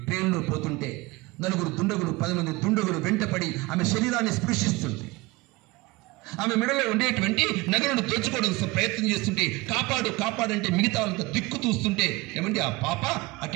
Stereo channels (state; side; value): quieter; left; 22.5 dB